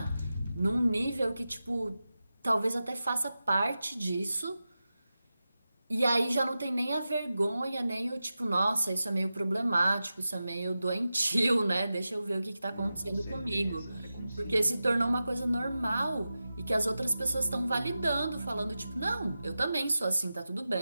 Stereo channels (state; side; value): inverted; both; correlation -0.93